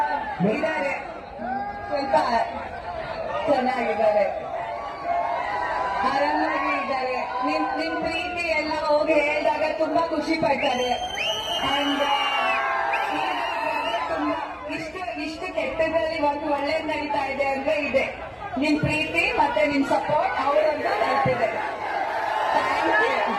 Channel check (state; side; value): identical; both; correlation 1.00